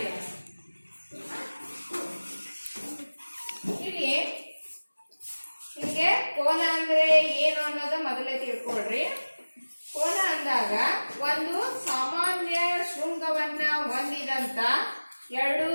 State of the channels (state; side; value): inverted; both; correlation -1.00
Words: ಹೀಗೆ ಕೋನ ಅಂದ್ರೆ ಏನು ಅನ್ನೋದು ಮೊದಲೇ ತಿಳ್ಕೊಳ್ರಿ. ಕೋನ ಅಂದಾಗ ಒಂದು ಸಾಮಾನ್ಯ ಶೃಂಗವನ್ನ ಹೊಂದಿದಂತ ಎರಡು